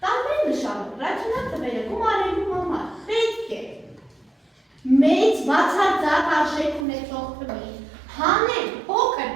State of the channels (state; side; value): drops out; left; at 6.9 s